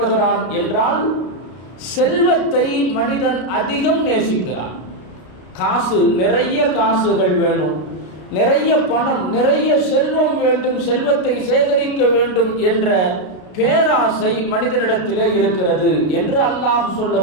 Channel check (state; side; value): late; right; 32 ms